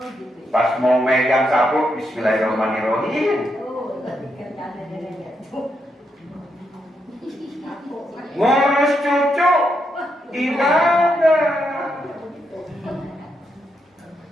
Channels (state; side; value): normal; both; correlation 0.81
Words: Pas mau megang sapu, bismillahirrahmanirrahim. Ngurus cucu, ibadah.